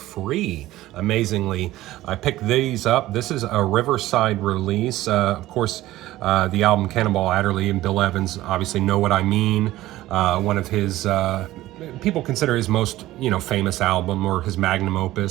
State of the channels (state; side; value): quieter; left; 16.0 dB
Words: amazingly. I picked these up. This is a Riverside release. Of course, the album Cannonball Adderley and Bill Evans obviously know what I mean. One of his, people consider his most, famous album or his magnum